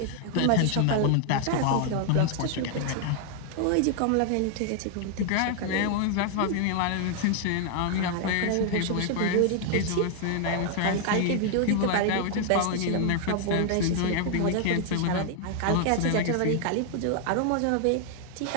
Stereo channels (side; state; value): both; different; correlation 0.00